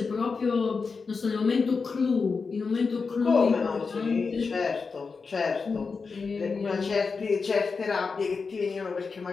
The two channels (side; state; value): right; quieter; 4.8 dB